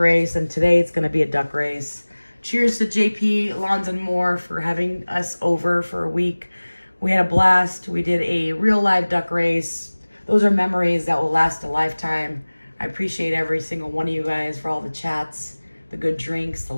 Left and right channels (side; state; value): both; inverted; correlation -1.00